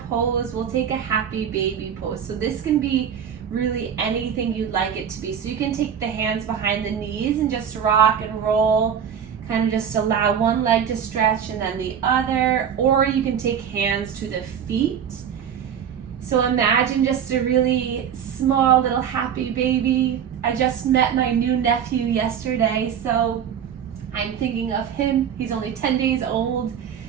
pose. We'll take a happy baby pose. So this can be really anything you'd like it to be. So you can take the hands behind the knees and just rock and roll, kind of just allow one leg to stretch and then the other, or you can take hands to the feet. So imagine just a really small little happy baby. I just met my new nephew yesterday, so I'm thinking of him. He's only 10 days old,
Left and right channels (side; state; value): left; quieter; 8.2 dB